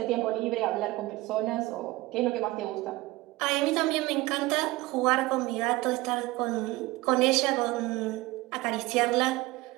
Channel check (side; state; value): left; quieter; 19.8 dB